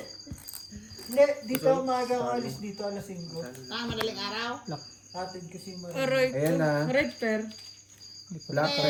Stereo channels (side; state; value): both; identical; correlation 1.00